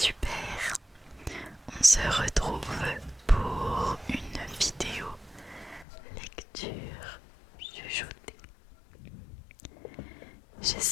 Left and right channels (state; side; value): drops out; right; at 5.9 s